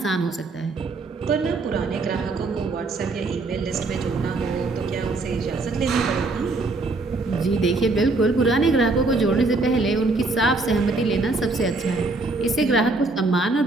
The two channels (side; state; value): left; quieter; 3.4 dB